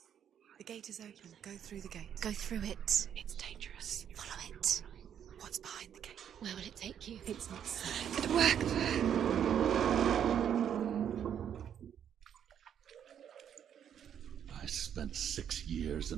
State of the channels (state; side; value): quieter; left; 9.0 dB